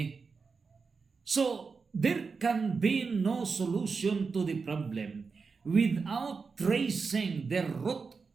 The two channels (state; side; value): quieter; left; 4.9 dB